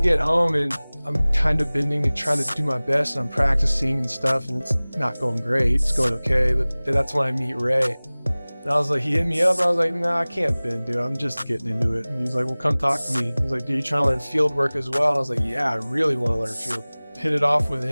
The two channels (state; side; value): inverted; both; correlation -1.00